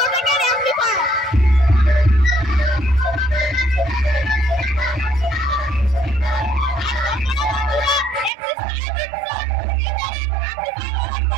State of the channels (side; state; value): left; drops out; at 8.3 s